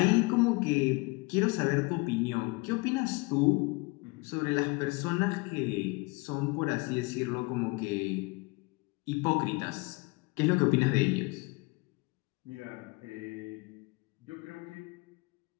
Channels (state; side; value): quieter; right; 26.4 dB